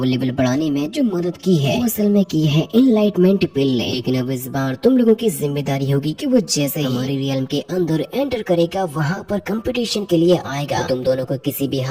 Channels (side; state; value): both; identical; correlation 1.00